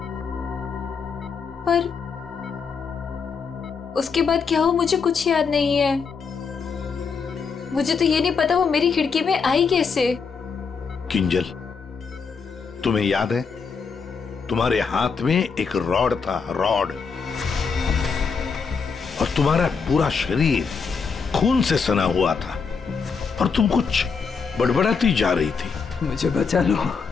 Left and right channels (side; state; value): right; quieter; 5.5 dB